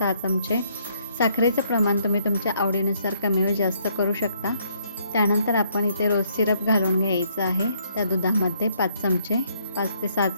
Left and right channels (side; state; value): both; inverted; correlation -0.69